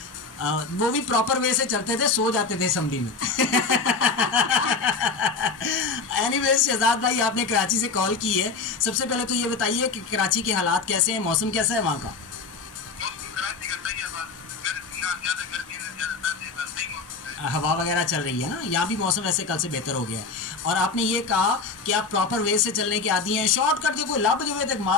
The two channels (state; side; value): quieter; right; 4.4 dB